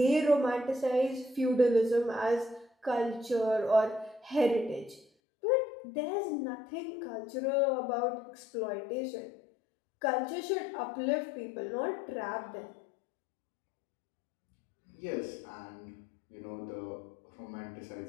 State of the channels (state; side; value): drops out; right; at 5.1 s